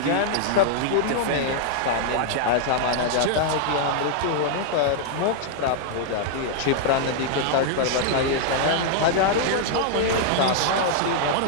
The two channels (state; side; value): different; both; correlation -0.01